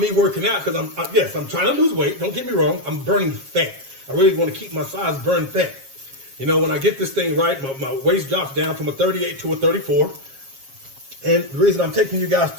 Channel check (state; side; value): late; left; 7.3 ms